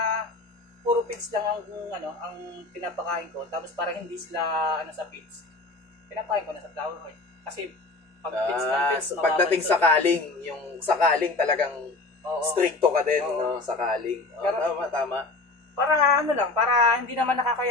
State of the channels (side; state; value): right; quieter; 3.3 dB